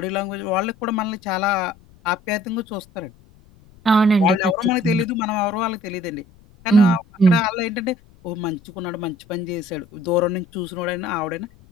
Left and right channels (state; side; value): noise; left; rumble, 27 dB below the sound